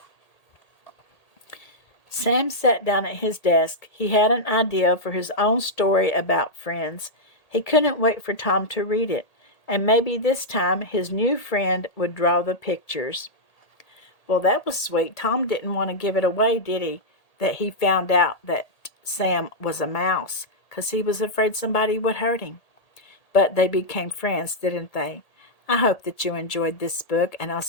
Sam sat down at his desk. He had an idea for his own story about friends. He couldn't wait for Tom to read it, and maybe this time his new friend would draw the pictures. Well, that was sweet. Tom didn't want to give it away, did he? That he found out that Sam was a mouse, 'cause he was afraid somebody would hurt him. But they became friends, didn't they? I hope that you enjoyed this book, and I'll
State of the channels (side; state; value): right; late; 1.8 ms